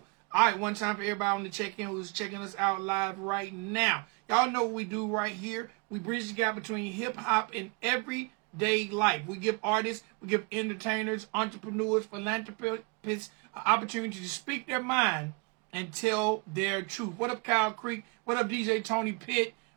All right, one time for everybody on the check-in who's checking us out live right now. Y'all know what we do right here. We bridge the gap between hip-hop and everyday life. We give artists, we give entertainers, entrepreneurs, philanthropists an opportunity to speak their mind and tell their truth. What up, Kyle Creek? What up, DJ Tony Pitt?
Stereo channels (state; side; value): quieter; left; 31.7 dB